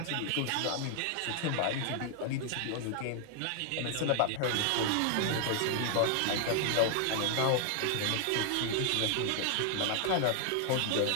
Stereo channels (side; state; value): both; different; correlation 0.00